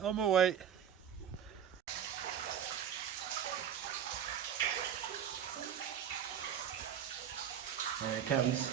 my way. There it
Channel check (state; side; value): quieter; left; 8.9 dB